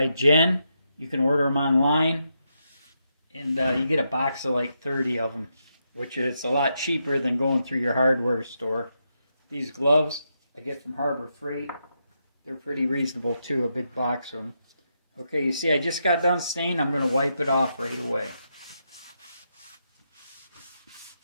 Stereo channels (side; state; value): both; inverted; correlation -0.83